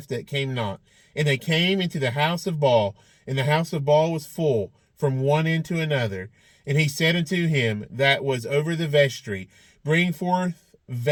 that came not. And they came into the house of Baal, and the house of Baal was full from one end to another. And he said unto him that was over the vestry, Bring forth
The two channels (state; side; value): identical; both; correlation 1.00